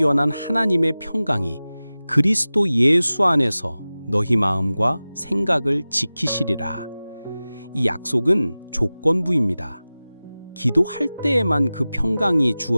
하나님의 평강이 그리스도 예수 안에서 너희 마음과 생각을 지키시리라. 이 약속은 조건부입니다. 기도할 때에만 그 평강이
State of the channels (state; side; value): inverted; both; correlation -0.97